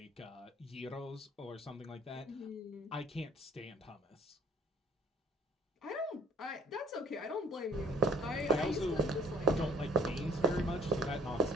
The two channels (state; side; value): normal; both; correlation 0.56